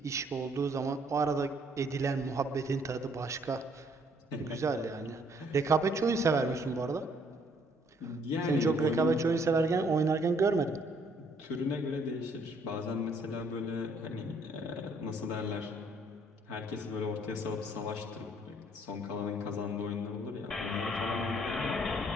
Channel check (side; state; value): both; normal; correlation 0.65